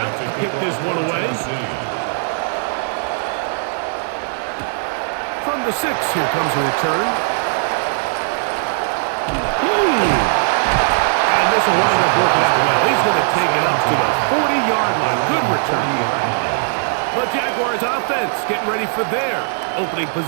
to kick this one away. From the 6, here comes a return. And this will wind up working out well. He's going to take it up to the 40-yard line. Good return. The Jaguars offense getting ready for their opening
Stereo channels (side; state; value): left; silent; digital silence